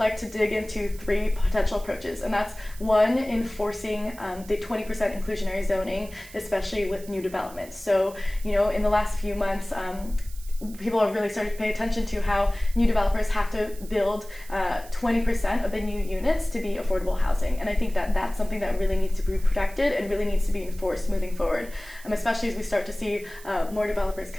to dig into 3 potential approaches, and that's one, enforcing the 20% inclusionary zoning, especially with new developments. So, in the last few months, people have really started to pay attention to how new developers have to build 20% of the new units to be affordable housing. And I think that that's something that really needs to be protected and really needs to be enforced moving forward, especially as we start to see more developers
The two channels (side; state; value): right; noise; hiss, 19 dB below the sound